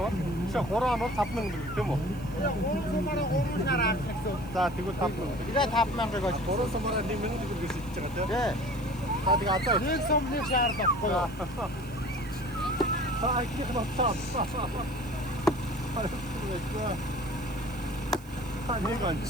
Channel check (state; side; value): noise; right; hiss, 24 dB below the sound